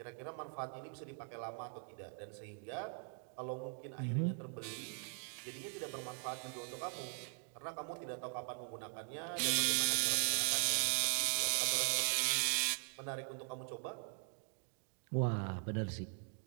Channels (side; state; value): left; silent; 50 dB below the other